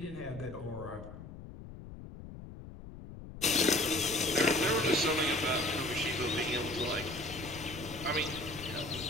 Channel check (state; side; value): noise; left; rumble, 13 dB below the sound